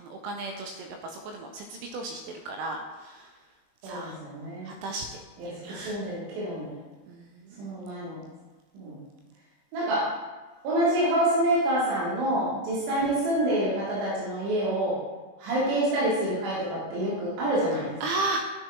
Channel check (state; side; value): late; left; 21 ms